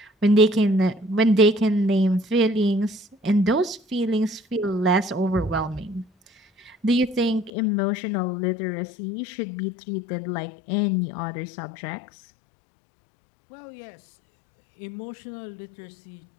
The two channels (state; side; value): drops out; right; at 7.5 s